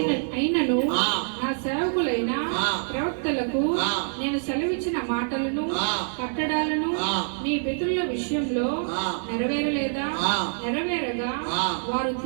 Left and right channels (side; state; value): left; silent; digital silence